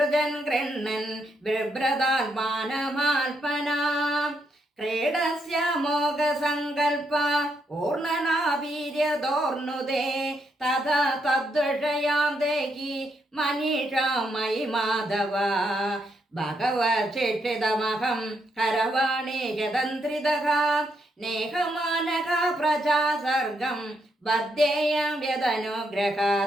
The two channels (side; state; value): both; normal; correlation 0.78